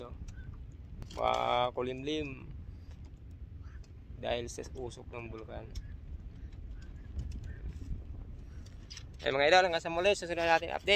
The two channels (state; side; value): identical; both; correlation 1.00